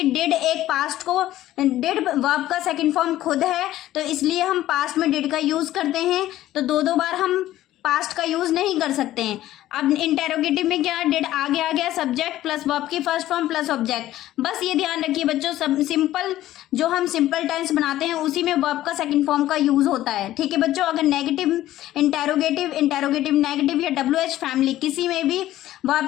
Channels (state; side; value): quieter; right; 14.2 dB